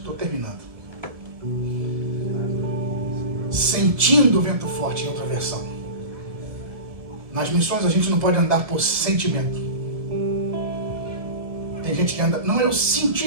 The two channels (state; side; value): late; left; 1.7 ms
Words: terminando. Sentindo o vento forte, em outra versão. Nas missões a gente não pode andar por sentimento. Tem gente que anda... Não, eu